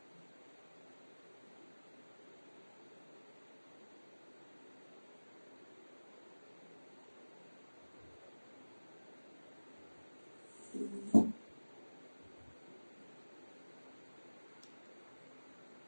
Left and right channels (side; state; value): both; inverted; correlation -1.00